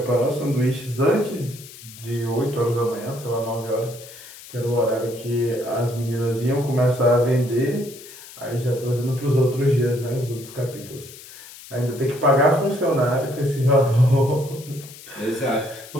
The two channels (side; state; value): left; noise; hiss, 17 dB below the sound